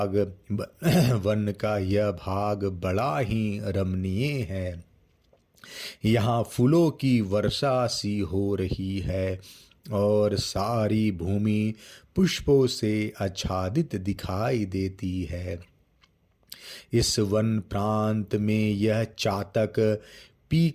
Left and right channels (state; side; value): identical; both; correlation 1.00